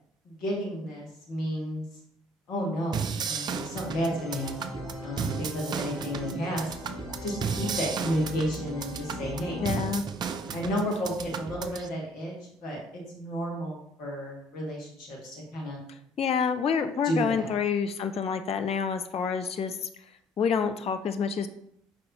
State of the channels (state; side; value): normal; both; correlation 0.58